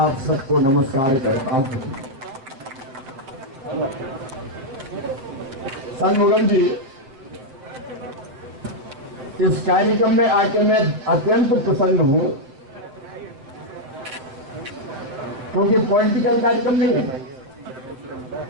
आप सबको नमस्कार करता हूं। शंभुगम जी, इस कार्यक्रम में आके मैं अत्यंत प्रसन्न हूं, क्योंकि पॉलिटिकल कार्यक्रम नहीं है,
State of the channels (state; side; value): late; left; 7.6 ms